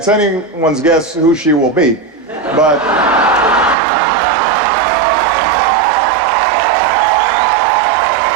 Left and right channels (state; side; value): drops out; left; at 3.8 s